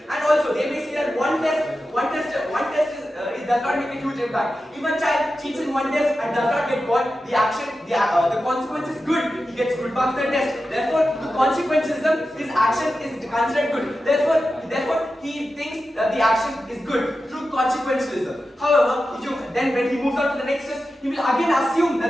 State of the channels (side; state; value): both; normal; correlation 0.92